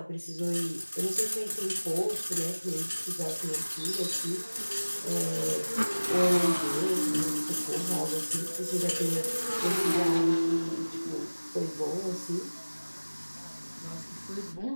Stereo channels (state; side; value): inverted; both; correlation -1.00